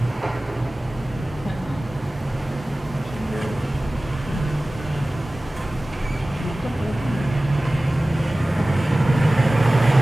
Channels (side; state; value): both; normal; correlation 0.97